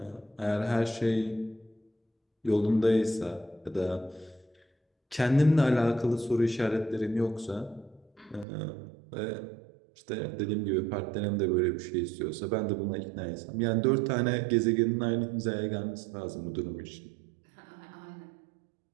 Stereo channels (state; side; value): drops out; left; at 8.5 s